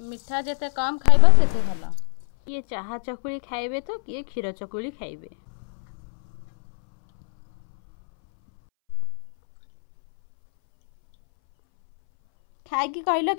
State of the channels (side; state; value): right; silent; 63 dB below the other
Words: मिठा जिते कम खाइबा सेते भल। किए चाहा चकुली खाइबे तो किए क्षीर चकुली खाइबे। खाई कि कहलो